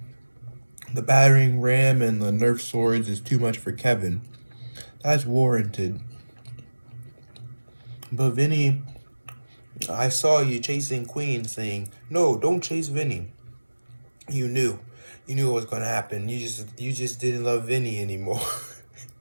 the battering ram and the Nerf swords is too much for Kevin. That's warranted. But Vinny, I saw you chasing Queen saying, no, don't chase Vinny. You knew. You knew what was gonna happen. You just didn't love Vinny anymore.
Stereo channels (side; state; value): both; inverted; correlation -1.00